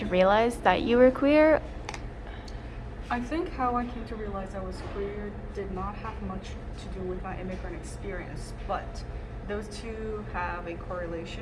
realize that you were queer? I think how I came to realize I was queer did not have much to do with my immigrant experience, but those two have a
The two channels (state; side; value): identical; both; correlation 1.00